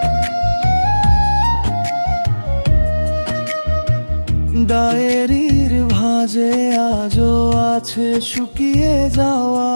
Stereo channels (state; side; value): inverted; both; correlation -1.00